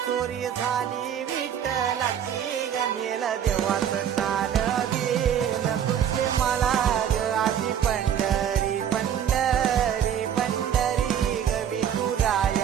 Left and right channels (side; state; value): left; quieter; 9.2 dB